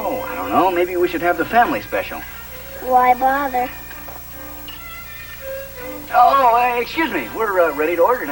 I don't know. Maybe we should have the family special. Why bother? Oh, excuse me. We're ready to order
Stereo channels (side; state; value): both; identical; correlation 1.00